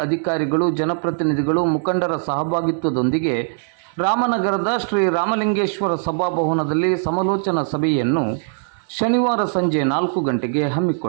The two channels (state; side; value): silent; left; 65 dB below the other